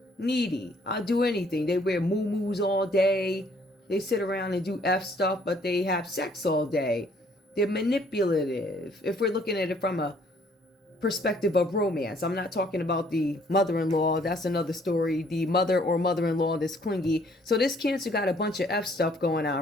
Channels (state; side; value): normal; both; correlation 0.62